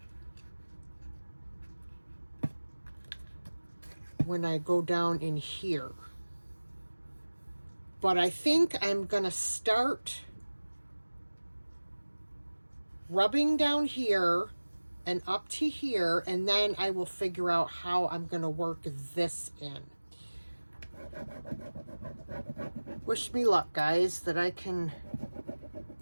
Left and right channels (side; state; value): both; inverted; correlation -1.00